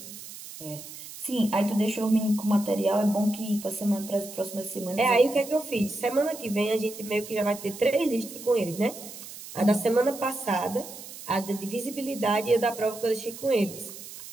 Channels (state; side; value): noise; right; hiss, 13 dB below the sound